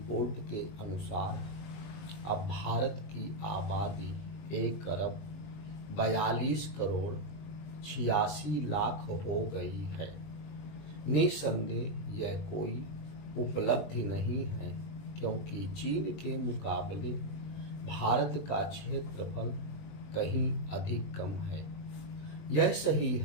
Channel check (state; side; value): late; right; 20 ms